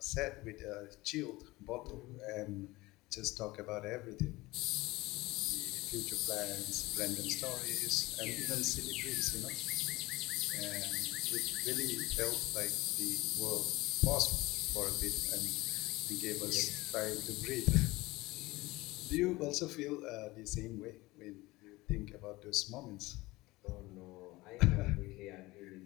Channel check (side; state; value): right; quieter; 20.5 dB